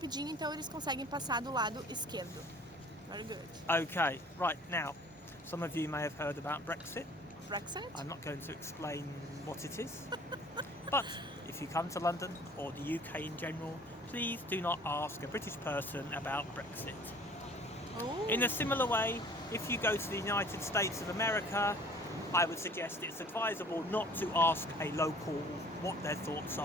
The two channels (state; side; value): normal; both; correlation 0.50